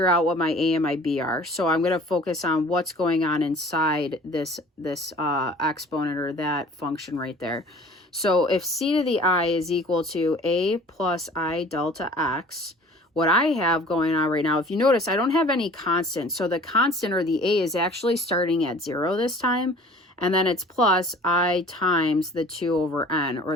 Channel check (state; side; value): normal; both; correlation 0.48